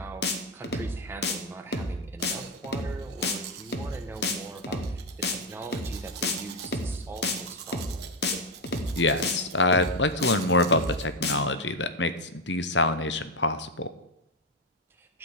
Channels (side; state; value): both; normal; correlation 0.04